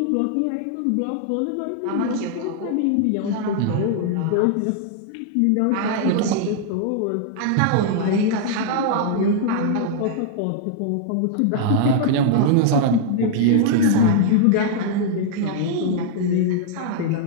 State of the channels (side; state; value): both; different; correlation -0.01